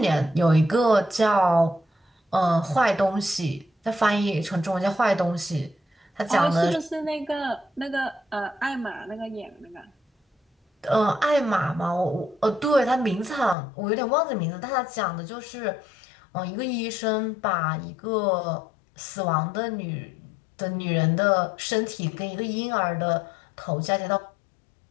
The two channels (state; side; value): drops out; right; at 13.6 s